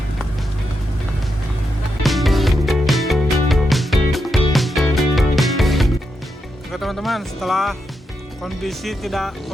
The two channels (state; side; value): normal; both; correlation 0.85